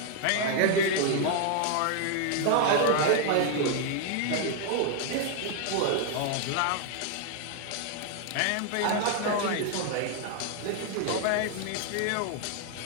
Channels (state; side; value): different; both; correlation 0.00